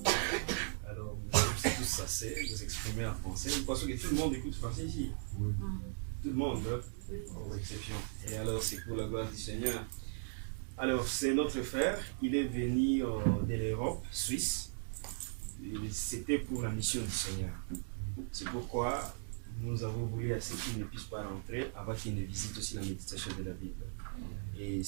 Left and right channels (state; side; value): silent; left; digital silence